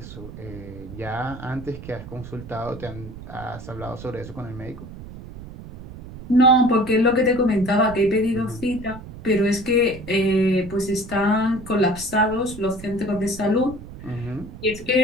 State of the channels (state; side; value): noise; right; rumble, 13 dB below the sound